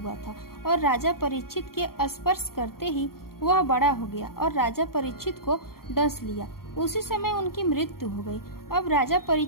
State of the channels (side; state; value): right; late; 0.93 ms